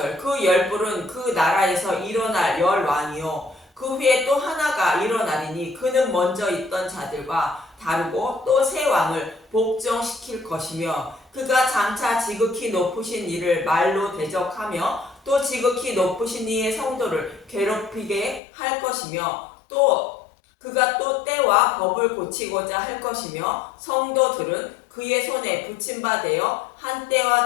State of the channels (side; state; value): right; drops out; at 18.4 s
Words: 그 10뿔은 그 나라에서 일어날 열왕이요 그 후에 또 하나가 일어나리니 그는 먼저 있던 자들과 다르고 또 새 왕을 복종시킬 것이며 그가 장차 지극히 높으신 이를 말로 대적하며 또 지극히 높으신 이의 성도를 괴롭히게 할 것이며 또 그가 또 때와 법을 고치고자 할 것이며 성도들은 그의 손에 붙임바 되어 한